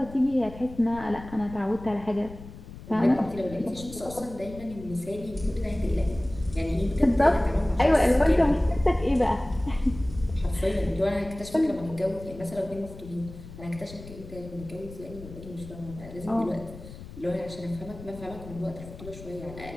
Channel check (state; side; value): noise; left; rumble, 15 dB below the sound